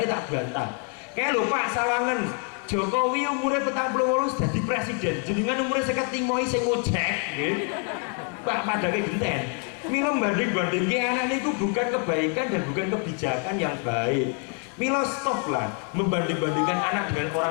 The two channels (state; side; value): quieter; right; 38.9 dB